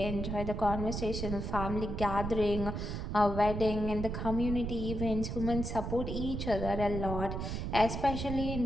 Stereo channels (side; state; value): right; noise; rumble, 4 dB below the sound